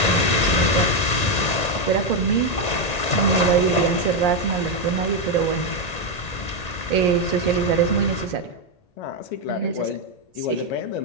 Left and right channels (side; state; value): right; late; 1.9 ms